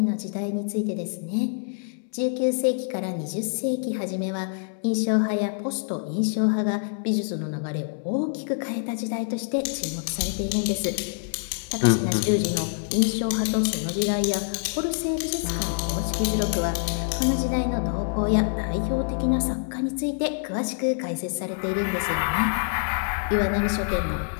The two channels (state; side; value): silent; right; 61 dB below the other